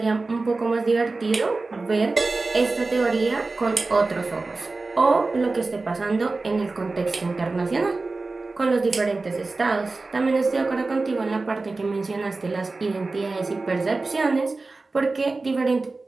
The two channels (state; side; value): quieter; left; 3.6 dB